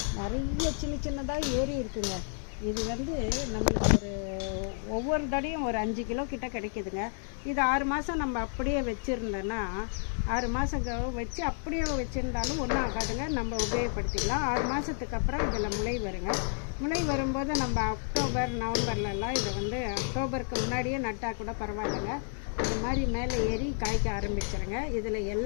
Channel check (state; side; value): silent; right; 57 dB below the other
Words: நிறைய சின்னதாக ஏறி இருக்குங்க. இது நம்மளுக்கு ஒவ்வொரு தடையும் ஒரு 5 கிலோ கிட்ட கிடைக்குதுங்க. இது 6 மாதம் நம்ம அப்படியே வச்சுருந்தோன்னா 6 மாதம் வச்சு அப்படியே வச்சுருந்தாலும் ஒன்றும் ஆகாதுங்க. நம்ம உபயோகப்படுத்திக்கலாம். 6 மாதத்துக்கு அப்புறம் இதில் முளை வருங்க. முளை வரும்போது நம்ம அக்டோபர் நவம்பர்லலாம் இதை அக்டோபருக்கு முன்னாடியே நட்டால் கூட பரவாயில்லைங்க. இது மாதிரி மேலே ஏறி காய்க்க ஆரம்பிச்சிருங்க. இதில்